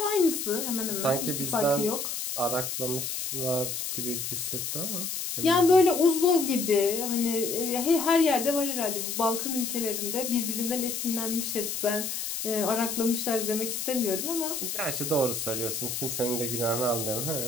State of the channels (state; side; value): noise; left; hiss, 4 dB below the sound